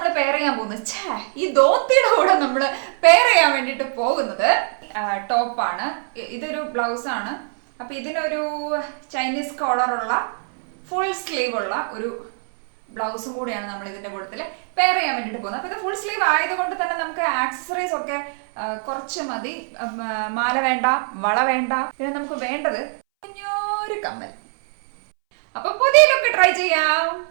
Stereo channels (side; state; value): left; silent; 63 dB below the other